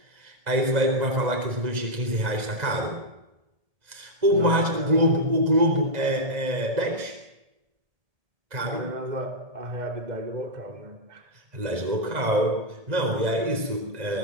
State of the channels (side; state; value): left; late; 1.9 ms